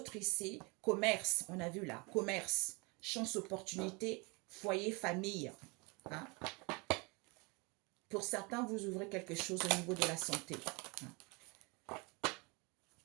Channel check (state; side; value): quieter; left; 28.8 dB